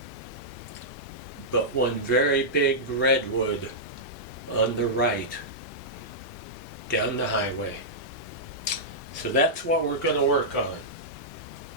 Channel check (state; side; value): normal; both; correlation -0.11